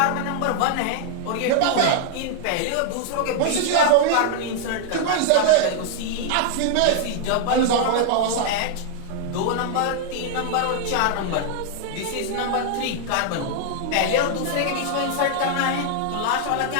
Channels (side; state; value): both; different; correlation 0.00